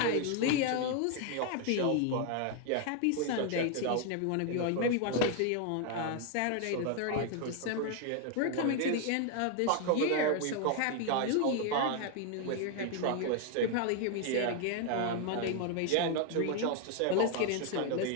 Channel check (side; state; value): both; different; correlation 0.01